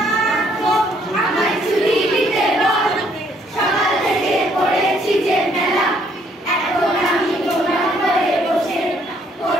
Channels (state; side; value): normal; both; correlation 0.67